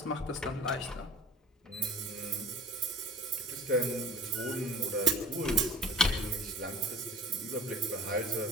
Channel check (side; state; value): both; normal; correlation 0.44